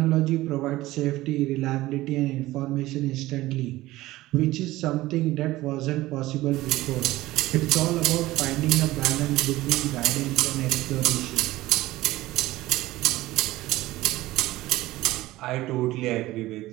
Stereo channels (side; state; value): left; quieter; 17.4 dB